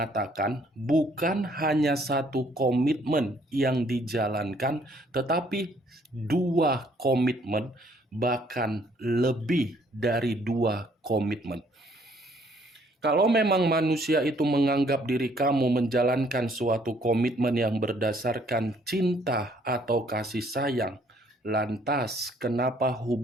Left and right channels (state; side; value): normal; both; correlation 0.64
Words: bukan hanya satu komitmen yang dijalankan, tetapi dua komitmen, bahkan lebih dari dua komitmen. Kalau memang manusia itu menganggap diri kamu menjalankan suatu komitmen yang berdasarkan cinta atau kasih sayang, lantas kenapa